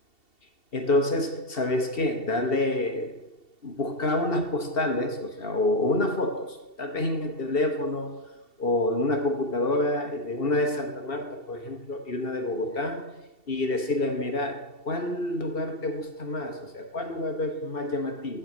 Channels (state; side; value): late; right; 2.7 ms